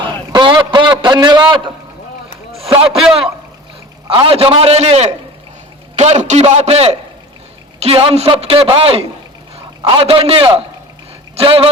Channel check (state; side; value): normal; both; correlation 0.38